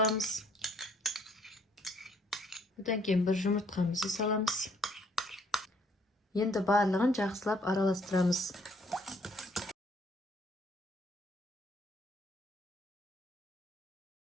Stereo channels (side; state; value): both; normal; correlation 0.65